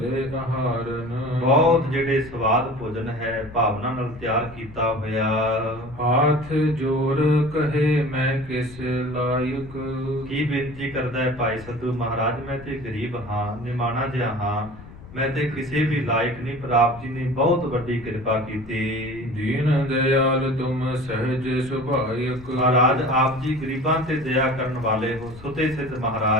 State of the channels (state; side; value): noise; left; rumble, 17 dB below the sound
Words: ਆਹਾਰਨ। ਬਹੁਤ ਜਿਹੜੇ ਸਵਾਦ ਭੋਜਨ ਹੈ ਭਾਵਨਾ ਨਾਲ ਤਿਆਰ ਕੀਤਾ ਹੋਇਆ। ਹਾਥ ਜੋਰ ਕਹੇ ਮੈਂ ਕਿਸ ਲਾਇਕ। ਕੀ ਬੇਨਤੀ ਕਰਦਾ ਹੈ ਭਾਈ ਸੱਧੂ ਮਹਾਰਾਜ, ਮੈਂ ਤੇ ਗਰੀਬ ਹਾਂ, ਨਿਮਾਣਾ ਜਿਹਾ ਹਾਂ, ਮੈਂ ਤੇ ਕਿਸੇ ਵੀ ਲਾਇਕ ਨਹੀਂ, ਪਰ ਆਪ ਜੀ ਨੇ ਬਹੁਤ ਵੱਡੀ ਕਿਰਪਾ ਕੀਤੀ। ਦੀਨ ਦਇਆਲ ਤੁਮ ਸਹਿਜ ਸੁਭਾਇਕ। ਮਹਾਰਾਜ ਆਪ ਜੀ ਗਰੀਬਾਂ ਤੇ ਦਇਆ ਕਰਨ ਵਾਲੇ ਹੋ, ਸੁਤੇ ਸਿੱਧ